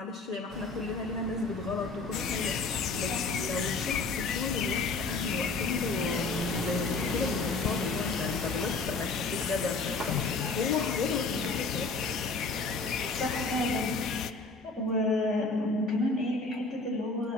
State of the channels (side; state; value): right; quieter; 3.8 dB